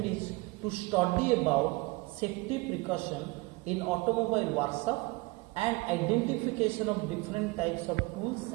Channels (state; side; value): quieter; left; 24.1 dB